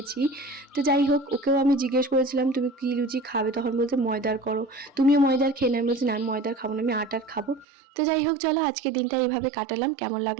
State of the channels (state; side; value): drops out; left; at 7.7 s